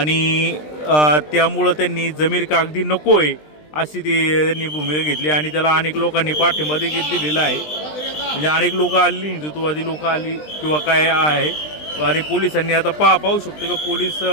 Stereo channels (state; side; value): late; right; 20 ms